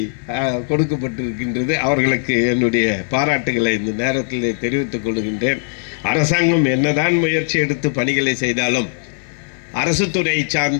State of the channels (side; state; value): right; silent; digital silence